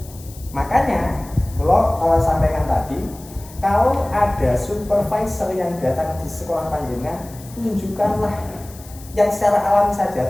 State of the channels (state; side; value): noise; left; hiss, 20 dB below the sound